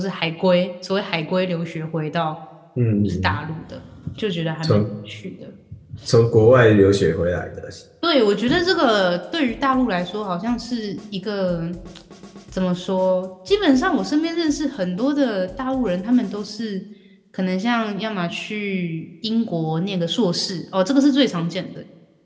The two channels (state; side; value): identical; both; correlation 1.00